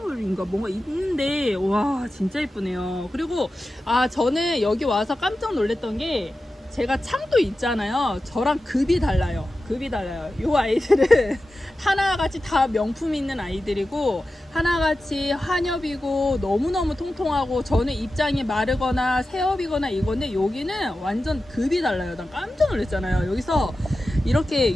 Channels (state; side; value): normal; both; correlation 0.93